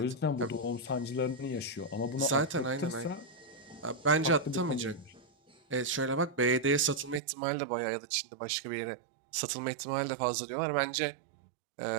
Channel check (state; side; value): drops out; left; at 7.2 s